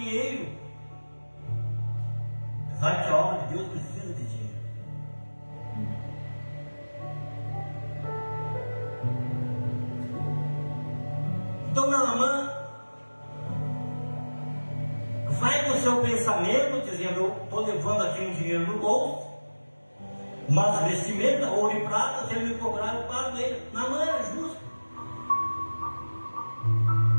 Apesar que a obra de Deus precisa de dinheiro. Então Naamã vai com o seu pensamento, dizendo, eu estou levando aqui um dinheiro no bolso, mas vestimenta, ouro e prata, se ele me cobrar, eu pago ele. Naamã é justo.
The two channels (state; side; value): inverted; both; correlation -1.00